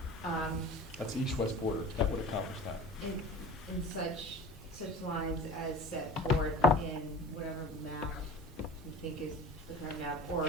That's the east-west border. That would accomplish that. In such lines as set forth in whatever map you think is the current map,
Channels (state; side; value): normal; both; correlation 0.38